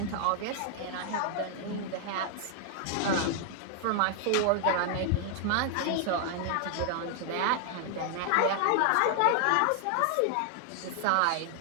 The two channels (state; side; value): different; both; correlation 0.00